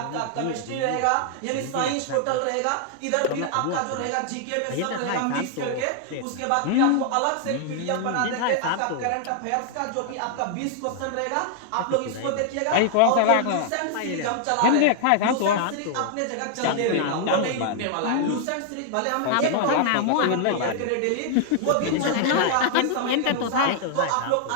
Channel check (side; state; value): both; different; correlation 0.00